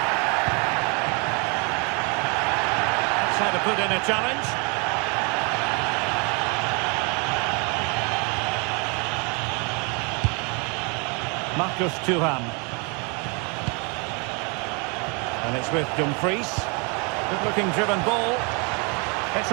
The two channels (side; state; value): left; quieter; 33.2 dB